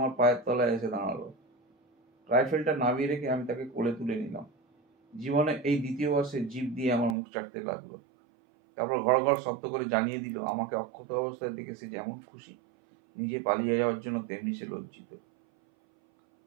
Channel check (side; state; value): left; drops out; at 7.2 s